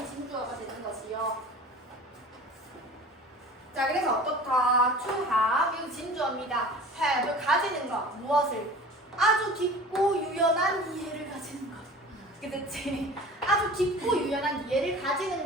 진주어가 되는 것이요. 자, 그래서 어떻다? to have 이거 진주어입니다. have 가지는 것. 무엇을? 아주 깊고 유연한 이해를 가지는 것. 그렇지? 아주 깊고 유연한 이해를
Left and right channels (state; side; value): normal; both; correlation 0.41